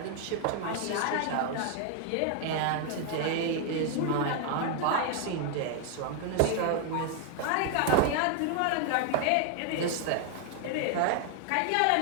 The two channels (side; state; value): both; different; correlation 0.00